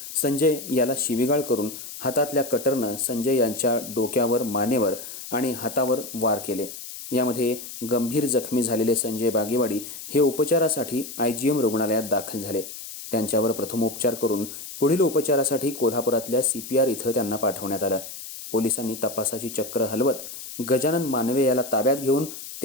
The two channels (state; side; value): noise; left; hiss, 11 dB below the sound